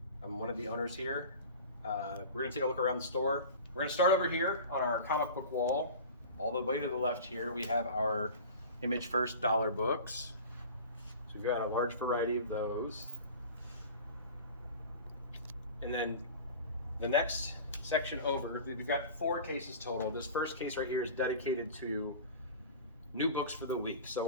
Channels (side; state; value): both; inverted; correlation -0.37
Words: I'm one of the owners here. We're going to take a look around the store. We're going to start over here on our comic book wall. All the way to the left here, we have our Image First dollar books. So we've got a large variety of those. And then the next section over, we've got 4 cases total. This first case right here is dedicated to new books for the week.